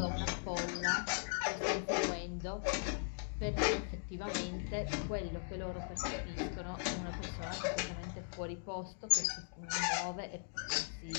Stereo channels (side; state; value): right; silent; digital silence